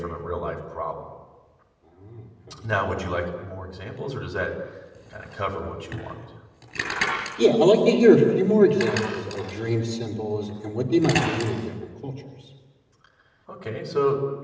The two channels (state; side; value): identical; both; correlation 1.00